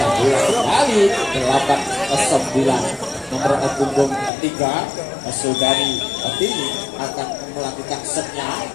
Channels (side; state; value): right; drops out; at 4.3 s